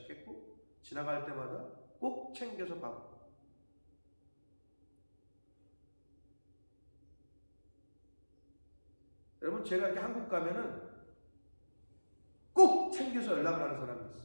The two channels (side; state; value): both; inverted; correlation -1.00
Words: 지나갈 때마다 꼭 챙겨서 받고, 여러분 제가 이렇게 한국 가면은 꼭 챙겨서 연락을 하는 사람이 있어요.